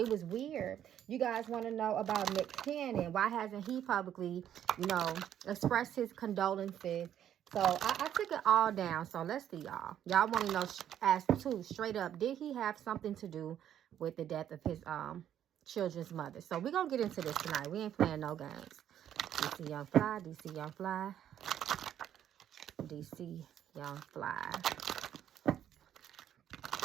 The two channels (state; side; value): quieter; left; 10.4 dB